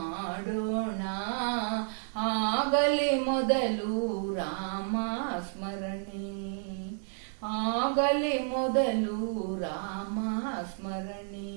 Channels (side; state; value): left; silent; 57 dB below the other